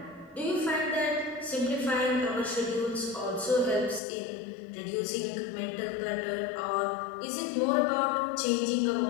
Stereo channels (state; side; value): drops out; right; at 4.0 s